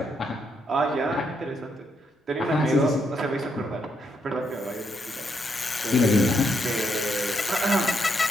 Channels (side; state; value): both; normal; correlation 0.77